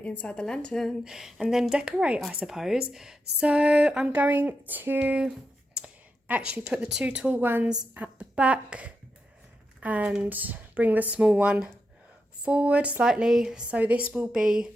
inside the lantern and then decorate, I suppose. So I'm going to actually put the two tall ones at the back and bring the small one forward slightly. So this will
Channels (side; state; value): both; normal; correlation 0.86